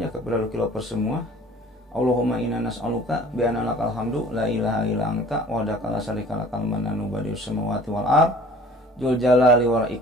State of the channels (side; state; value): both; normal; correlation 0.49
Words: ya kepada Lukilopers semua. Allahumma inna nas'aluka bi anna lakal hamdu la ilaha illa anta wahdaka la syarika lakal mananu badius samawati wal ard dzul jalali wal